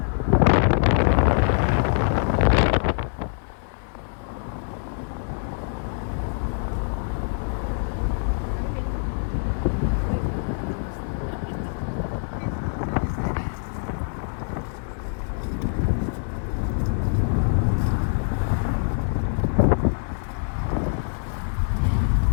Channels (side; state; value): right; silent; 61 dB below the other